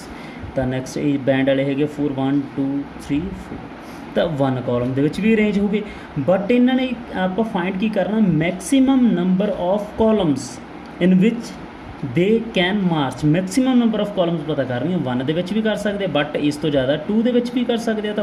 ਤਾਂ ਨੈਕਸਟ ਇਹ ਬੈਂਡ ਵਾਲੇ ਹੈਗੇ 4 1 2 3 4, ਤਾਂ 1 ਕਾਲਮ ਦੇ ਵਿੱਚ ਵੀ ਅਰੇਂਜ ਹੋ ਗਏ। ਬਟ ਇਹਨਾਂ ਨੇ ਆਪਾਂ ਫਾਈਂਡ ਕੀ ਕਰਨਾ, maximum number of columns in which they can March. Maximum number of columns ਪਤਾ ਕਰਨੀ, 1 ਦੇ ਵਿੱਚ ਵੀ ਕਰ ਸਕਦੇ ਬਟ ਇਸ ਤੋਂ ਜ਼ਿਆਦਾ 2 ਦੇ ਵਿੱਚ ਵੀ ਕਰ ਸਕਦੇ ਆ।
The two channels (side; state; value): both; identical; correlation 1.00